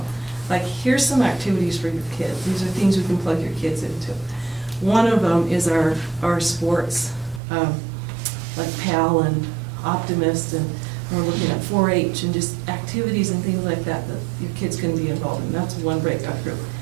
Like, here's some activities for your kids. These are things we can plug your kids into. One of them is our sports, like PAL and Optimist, and we're looking at 4-H and just activities and things like that your kids can be involved in. That's one breakout group.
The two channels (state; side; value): drops out; left; at 7.4 s